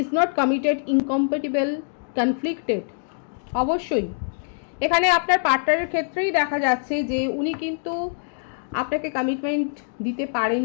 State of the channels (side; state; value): right; silent; digital silence